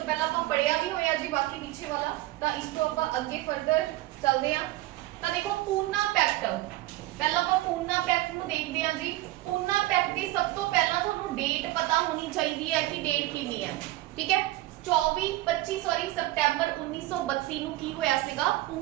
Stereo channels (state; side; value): quieter; left; 17.4 dB